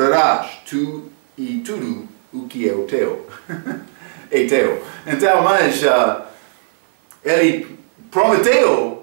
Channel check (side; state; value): left; silent; 57 dB below the other